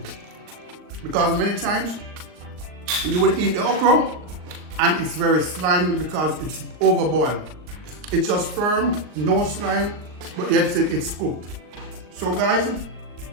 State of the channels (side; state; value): left; late; 39 ms